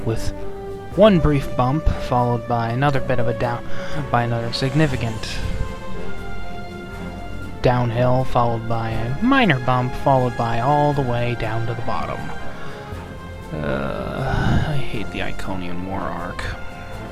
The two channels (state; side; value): identical; both; correlation 1.00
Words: with one brief bump followed by another bit of another significant downhill, followed by a minor bump, followed by all the way down to the bottom. I hate the Iconian War arc.